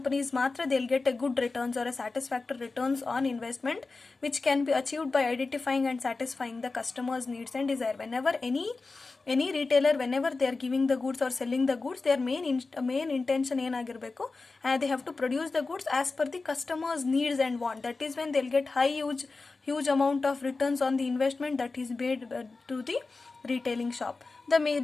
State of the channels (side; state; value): right; quieter; 3.8 dB